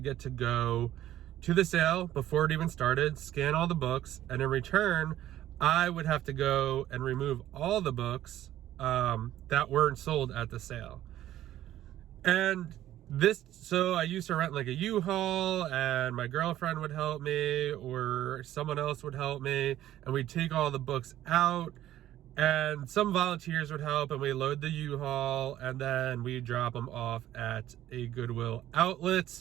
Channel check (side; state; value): left; quieter; 13.1 dB